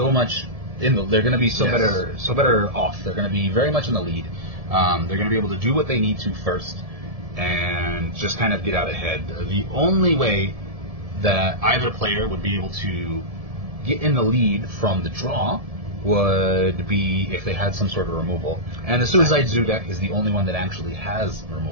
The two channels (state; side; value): late; left; 1.7 ms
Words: much they're going to be better off. They're going to be very much in the lead. They're going to be able to do what they need to first and just kind of get out ahead. The only way that either player would be able to get in the lead from the draw would be if they had some sort of removal. And the Suicide Zoo deck is the only one that actually has